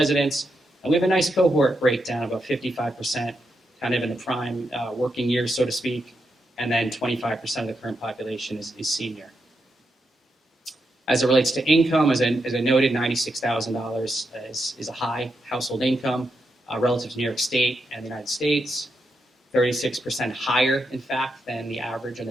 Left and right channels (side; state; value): both; normal; correlation 0.84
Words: and we have a nice cohort breakdown, about 55% kind of in the prime working years, so to speak, and then 25% of the current population is senior. As it relates to income, as I noted, $96,000 is a high household income relative to New York State and the United States. 36% higher, in fact, than the average or